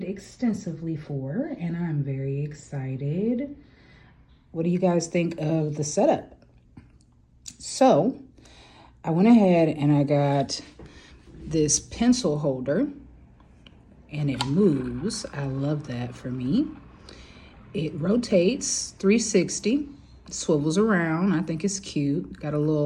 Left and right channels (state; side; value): identical; both; correlation 1.00